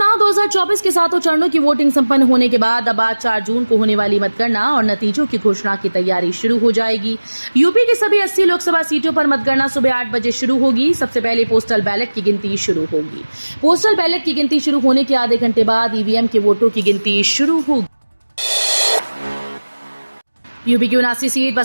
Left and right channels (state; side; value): inverted; both; correlation -1.00